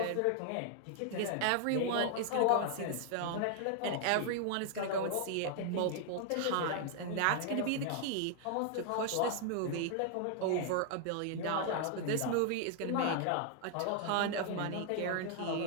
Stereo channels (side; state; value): both; different; correlation 0.00